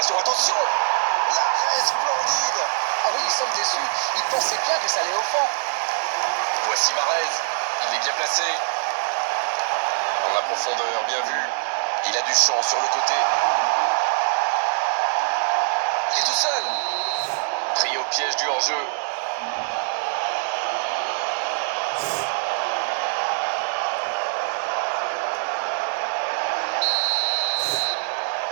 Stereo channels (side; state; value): left; silent; 63 dB below the other